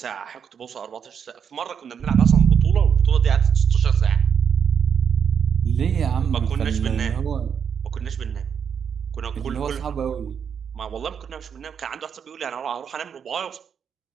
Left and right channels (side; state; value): left; quieter; 7.4 dB